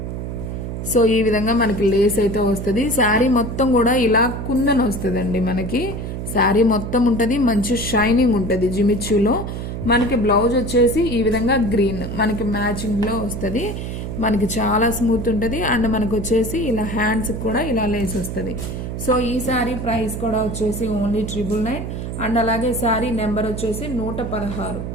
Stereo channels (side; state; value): right; noise; hum, 5 dB below the sound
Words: సో ఈ విధంగా మనకి లేస్ అయితే వస్తుంది. శారీ మొత్తం కూడా ఇలా కుందన్ వస్తుందండి. మనకి శారీ మొత్తం ఉంటుంది, మంచి షైనింగ్ ఉంటుంది జిమిచ్యూలో. మనకి బ్లౌజ్ వచ్చేసి ఈ విధంగా గ్రీన్ మనకి మ్యాచింగ్లో వస్తుంది. మనకి చాలా స్మూత్ ఉంటుంది. అండ్ మనకు వచ్చేసి ఇలా హ్యాండ్స్ కూడా ఇలా లేస్ వస్తుంది. సో ఈ శారీ ప్రైస్ కూడా వచ్చేసి ఓన్లీ 999. అండ్ అలాగే శారీ నెంబర్ వచ్చేసి